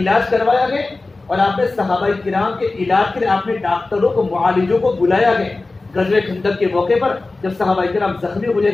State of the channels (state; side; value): quieter; right; 3.4 dB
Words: کروایا گیا، اور آپ نے صحابہ کرام کے علاج کے لیے آپ نے ڈاکٹروں کو، معالجوں کو بلایا گیا۔ غزوہ خندق کے موقع پر جب صحابہ کرام زخمی ہو